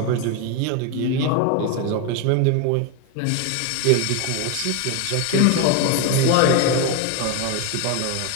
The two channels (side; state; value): both; different; correlation 0.01